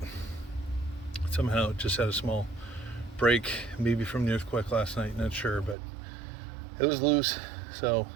Somehow it just had a small break, maybe from the earthquake last night, not sure, but it was loose. So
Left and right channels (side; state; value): left; drops out; at 5.8 s